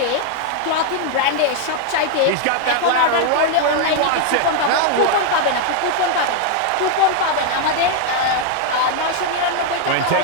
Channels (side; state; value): both; different; correlation 0.00